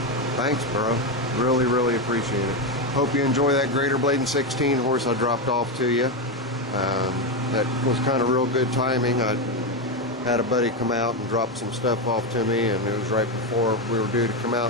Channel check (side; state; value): both; normal; correlation 0.10